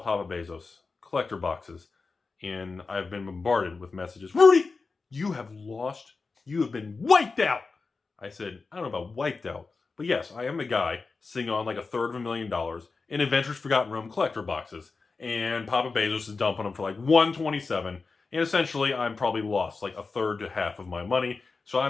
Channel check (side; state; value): right; quieter; 4.2 dB